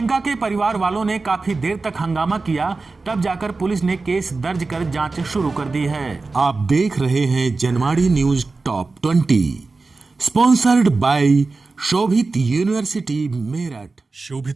के परिवार वालों ने काफी देर तक हंगामा किया, तब जाकर पुलिस ने केस दर्ज कर जांच शुरू कर दी है। आप देख रहे हैं Janwadi news top 20, sponsored by Shobhit university Meerut.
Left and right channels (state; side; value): quieter; left; 3.8 dB